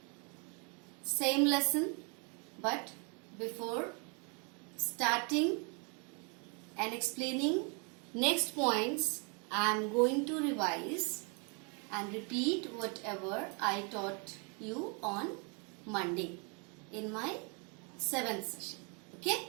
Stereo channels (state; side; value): quieter; left; 35.4 dB